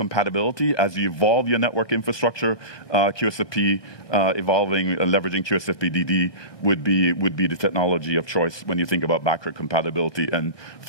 as you evolve your network infrastructure, QSFP evolving and leveraging QSFP-DD would be the technology of choice when you think about backward compatibility and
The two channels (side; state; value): right; late; 1.2 ms